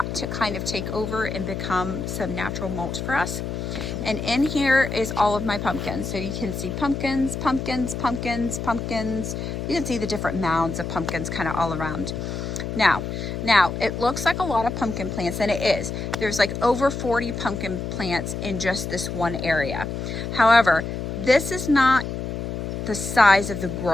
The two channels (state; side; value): noise; left; hum, 5 dB below the sound